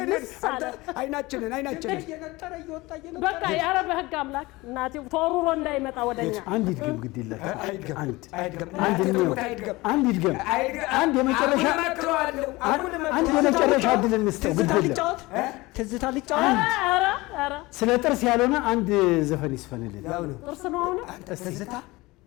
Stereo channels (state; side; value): quieter; right; 21.4 dB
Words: ልስ አለ? አይናችንን እየነጠረ እየወጣ በቃ ያረ በህግ አምላክ እናቴ ተወሩሮ እንዳይመጣ ወደኛ አንድ ይድገም ግድ ይላል። አንድ የመጨረሻ እድል እንስጠው ግድ ይላል። ትዝታ ልጫወት። ኧረ ስለ ጥርስ ያልሆነ አንድ ዘፈን ይስፈንልን። ጥርስ ነው አሁን ትዝታ